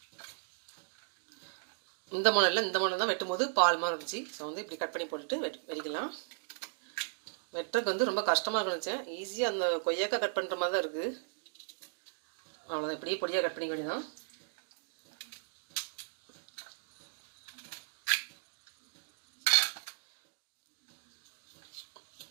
இந்த மாடல் தான் வெட்டும்போது பால் மாதிரி இருந்துச்சு. ஸோ வந்து இப்படி கட் பண்ணி போட்டுட்டு வெடிக்கலாம். வெட்டுறதுக்கு வந்து ரொம்ப கஷ்டமாக இருந்துச்சேன். ஈஸியாக அந்த கொய்யாக்காய் கட் பண்ணுற மாதிரி தான் இருக்குது. அவ்வளோதான், இப்படியே பொடியாக கட் பண்ணிக்க வேண்டியதான்.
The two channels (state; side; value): silent; left; digital silence